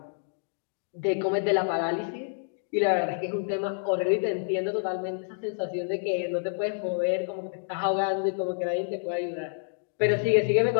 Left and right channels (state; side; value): silent; right; digital silence